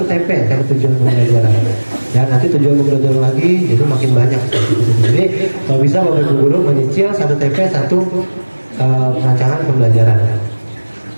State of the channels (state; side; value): inverted; both; correlation -1.00